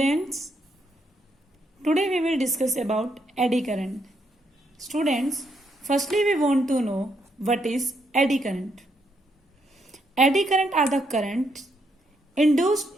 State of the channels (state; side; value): normal; both; correlation 0.76